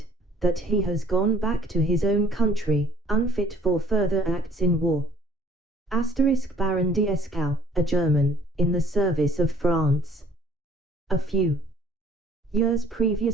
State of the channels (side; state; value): both; normal; correlation 0.57